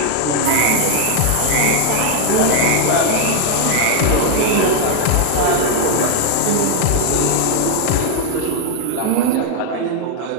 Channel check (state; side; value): different; both; correlation 0.00